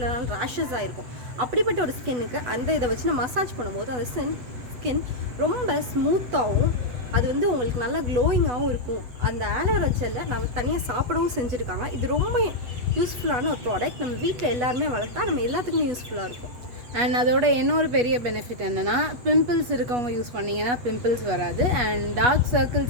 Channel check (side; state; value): left; late; 8.1 ms